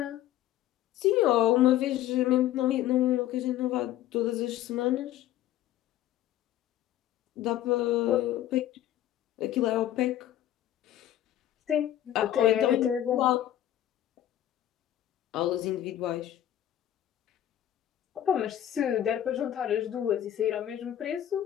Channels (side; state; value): right; quieter; 12.5 dB